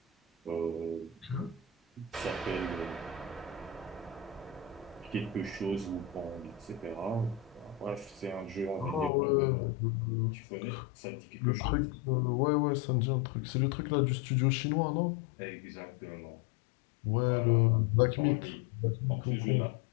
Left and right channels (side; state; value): right; drops out; at 9.1 s